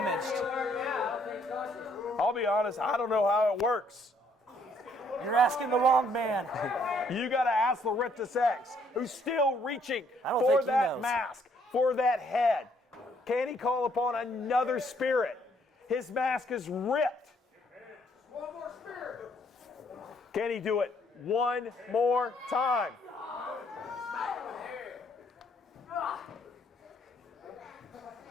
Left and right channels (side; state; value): both; normal; correlation 0.67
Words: I'll be honest, I don't know how it works. You're asking the wrong man. You got to ask Laurentis X, who's still reaching don't for think he that knows. mask, for that head. Can he call upon another spirit? His mask is ripped. One more spirit. Can he do it one more time?